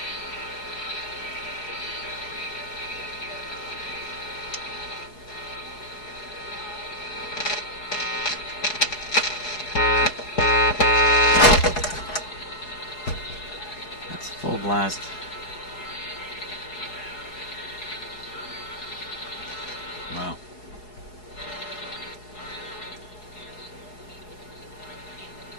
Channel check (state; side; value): late; right; 4.7 ms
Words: Full blast. Wow.